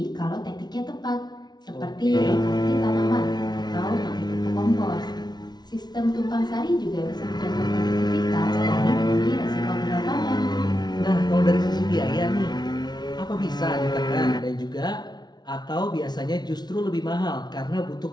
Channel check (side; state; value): right; late; 0.20 ms